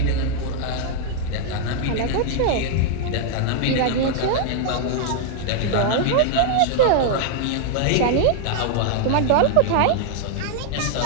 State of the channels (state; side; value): different; both; correlation 0.00